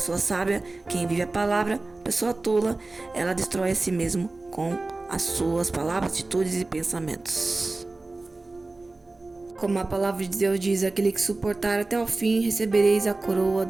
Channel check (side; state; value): left; quieter; 3.2 dB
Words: sábia, quem vive a palavra, a pessoa tola, ela destrói a si mesmo com as suas palavras, atitudes e pensamentos. Como a palavra de Deus diz, aquele que suportar até o fim, recebereis a coroa